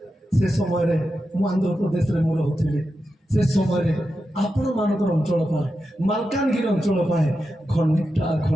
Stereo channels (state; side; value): normal; both; correlation 0.89